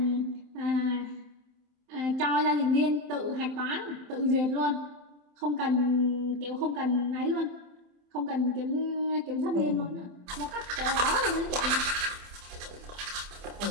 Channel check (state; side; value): late; left; 27 ms